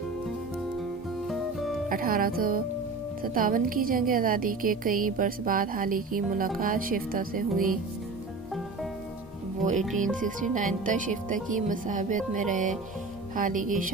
1857 کی جنگ آزادی کے کئی برس بعد حالی کی ملاقات شفتہ سے ہوئی۔ وہ 1869 تک شفتہ کی مصاحبت میں رہے۔ حالی کی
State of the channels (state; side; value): quieter; left; 3.8 dB